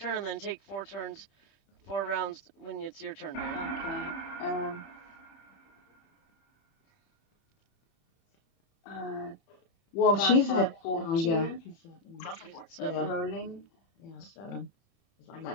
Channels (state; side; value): late; right; 30 ms